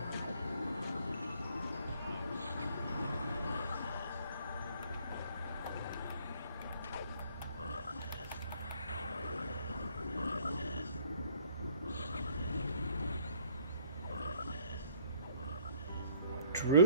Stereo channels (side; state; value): both; inverted; correlation -0.60